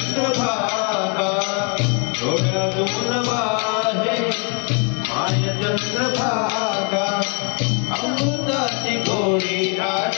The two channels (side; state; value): right; quieter; 36.5 dB